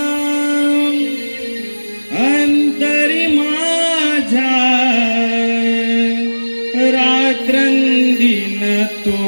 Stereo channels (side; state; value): both; inverted; correlation -1.00